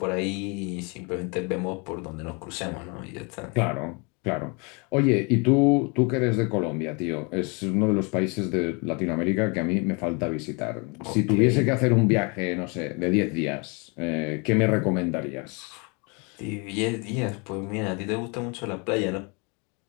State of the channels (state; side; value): quieter; right; 31.9 dB